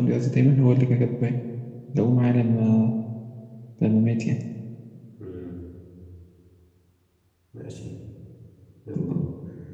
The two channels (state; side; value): identical; both; correlation 1.00